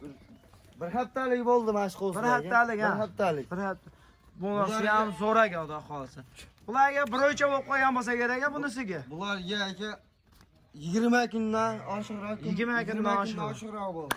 Bir haftalik bo'ldi mana shu qo'zlar. Bir haftalik, ha. Bir haftalik. Bir hafta. Bunisi ham zo'raga xudo xohlasa. Bularga bir o'lchab olib qo'ygan bo'lsa kerak bunisiga. Bularga aka 20 kundan oshiqroq. 20 kundan oshiqroq bo'ldi.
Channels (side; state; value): both; identical; correlation 1.00